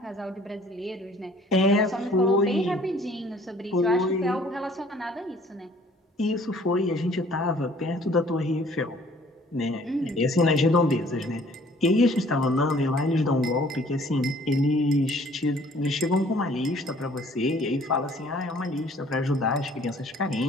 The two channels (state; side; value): normal; both; correlation 0.56